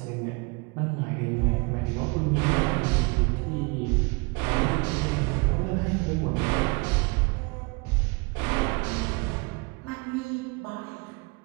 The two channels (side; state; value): left; quieter; 29.1 dB